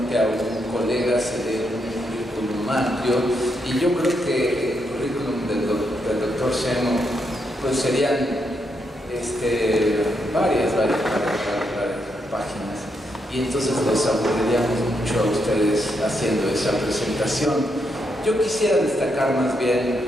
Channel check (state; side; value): normal; both; correlation 0.80